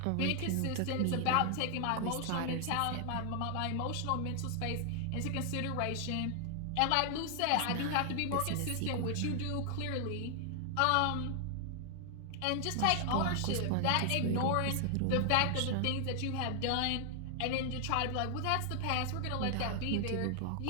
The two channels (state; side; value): different; both; correlation 0.00